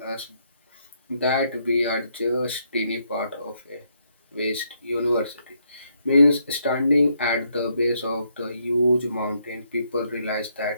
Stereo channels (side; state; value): both; inverted; correlation -0.75